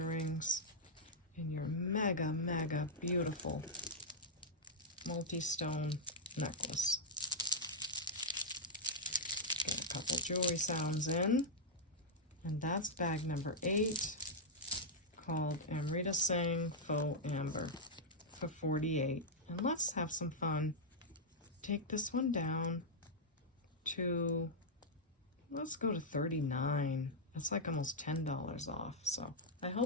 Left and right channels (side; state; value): both; normal; correlation -0.07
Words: and your mega, mega beautiful multi-stone necklace. Get a couple jewelry sounds in, and that's bag number 8, called Amrita Singh Faux Amber for $48. And let's have some fun. Take this one down to, let's go to $39. That's like almost $10 off. So I